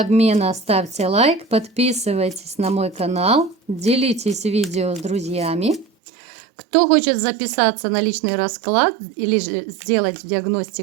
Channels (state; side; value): drops out; left; at 5.9 s